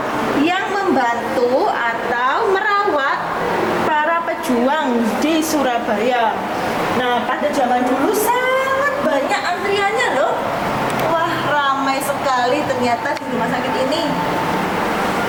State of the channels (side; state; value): both; identical; correlation 1.00